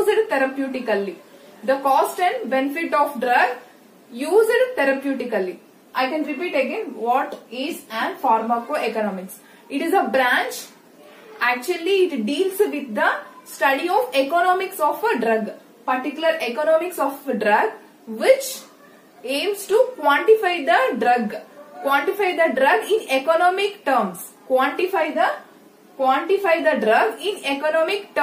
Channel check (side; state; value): both; identical; correlation 1.00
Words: therapeutically. The cost and benefit of drug used therapeutically. I can repeat again, what is an pharmacoeconomics? It is a branch, actually it deals with the study of economics of a drug, particular economics of a drug, which aims to quantify the drug. Quantify the drug in economic terms. Quantify the drug in economic